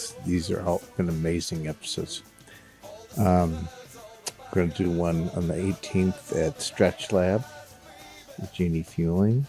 these are all been amazing episodes. We're going to do one on the 18th at Stretch Lab with Jeannie Fueling,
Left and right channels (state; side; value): identical; both; correlation 1.00